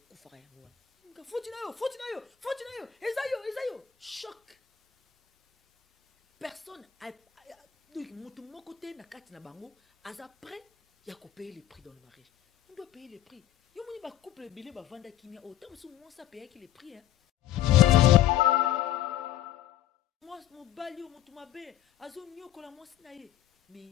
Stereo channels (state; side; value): quieter; right; 12.0 dB